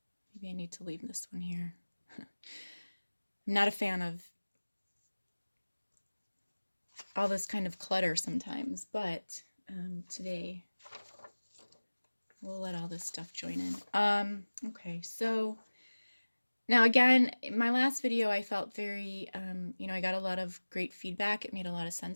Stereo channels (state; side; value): inverted; both; correlation -1.00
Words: Maybe I need to leave this one here. I'm not a fan of all this kind of clutter sometimes, but today we'll let all this stuff join in. Okay, so now again, in my last video, I felt very, I got a lot of great feedback. It made a lot of